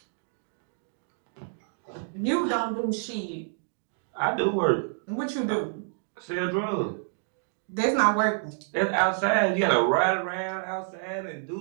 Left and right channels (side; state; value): left; silent; digital silence